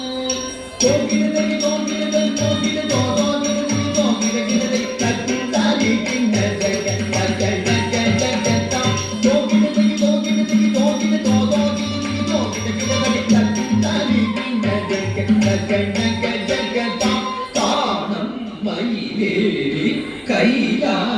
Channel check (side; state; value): both; identical; correlation 1.00